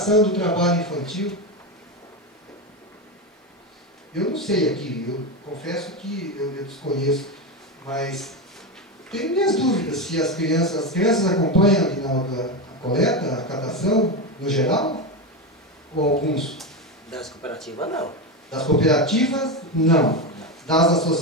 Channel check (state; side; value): normal; both; correlation 0.14